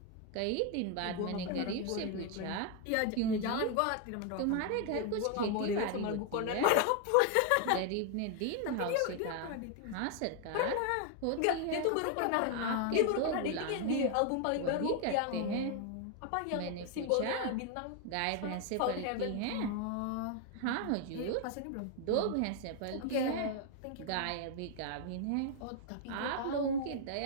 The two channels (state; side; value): different; both; correlation 0.00